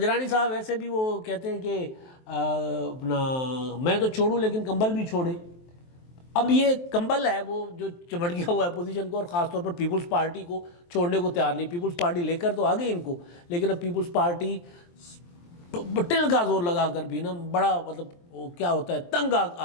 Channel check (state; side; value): late; right; 23 ms